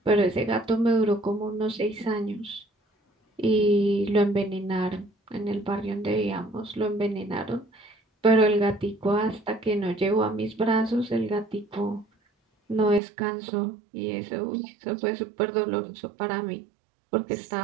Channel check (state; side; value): drops out; left; at 13.0 s